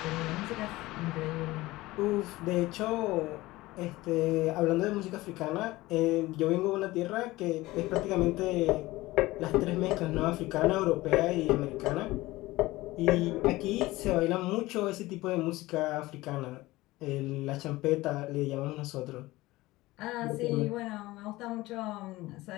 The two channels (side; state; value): right; quieter; 19.0 dB